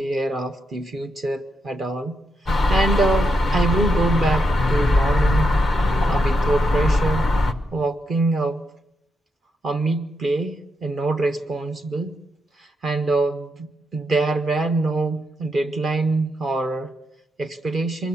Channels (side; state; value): both; normal; correlation 0.82